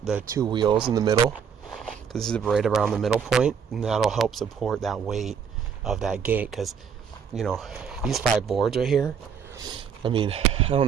the 2 wheels in the middle, because this is right around the middle point, and that'll help support that weight of that gate. Because, you know, these 5 boards right here, I mean, I don't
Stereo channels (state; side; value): quieter; left; 7.1 dB